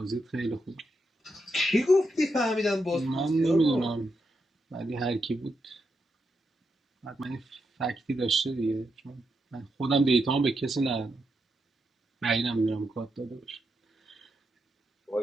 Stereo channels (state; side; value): normal; both; correlation 0.84